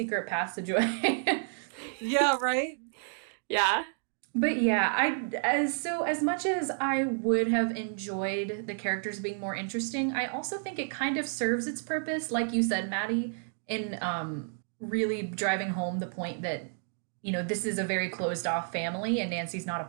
passageway." Yeah, right? Yeah. But yeah, as much as I would have enjoyed the characters being more interesting, I also think it kind of serves its purpose, like you said, Maddie, in really driving home the point that this is a very closed off family and Nancy's not a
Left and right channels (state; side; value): silent; left; 57 dB below the other